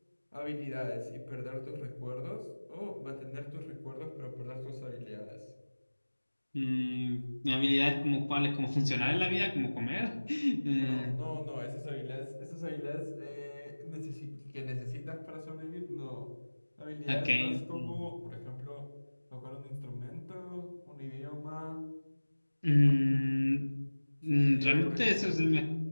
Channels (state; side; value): inverted; both; correlation -1.00